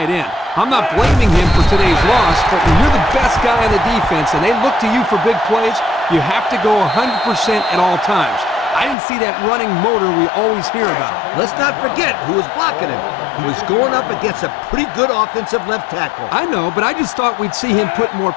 end. I'm not blaming him for today's loss, but when you're the best guy on the defense and they look to you for big plays, you have to go 100% at all times. I didn't see that running motor we always hear about. Let's not forget who was blocking him. He was going up against a pretty good offensive left tackle. I know, but I just thought we'd see him put more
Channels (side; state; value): right; drops out; at 9.0 s